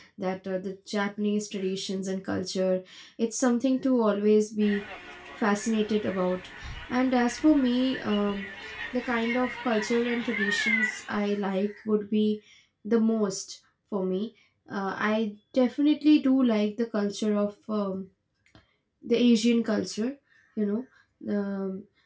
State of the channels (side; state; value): both; identical; correlation 1.00